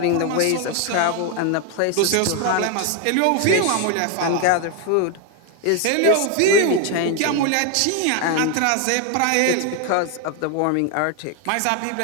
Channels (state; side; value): different; both; correlation 0.01